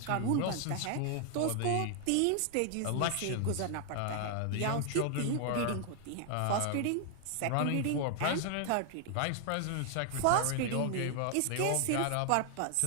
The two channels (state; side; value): different; both; correlation 0.00